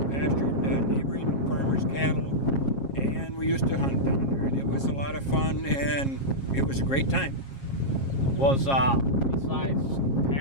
pastured neighboring farmers' cattle, and we used to hunt down there. And it was a lot of fun, and it was a great time. Was besides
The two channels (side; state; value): right; late; 7.4 ms